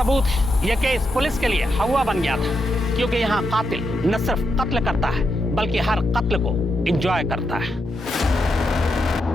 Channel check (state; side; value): normal; both; correlation 0.83